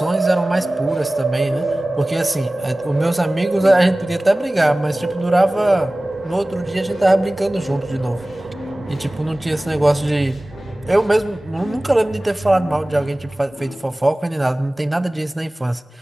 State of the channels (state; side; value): normal; both; correlation 0.98